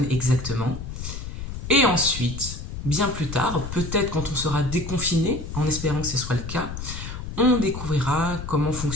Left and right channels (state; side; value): noise; left; rumble, 8 dB below the sound